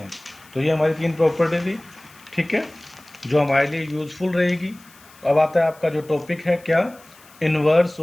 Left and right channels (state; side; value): noise; left; hiss, 25 dB below the sound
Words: तो ये हमारी 3 प्रॉपर्टी थी, ठीक है, जो हमारे लिए यूजफुल रहेगी। अब आता है आपका जो टॉपिक है, क्या, इन्वर्स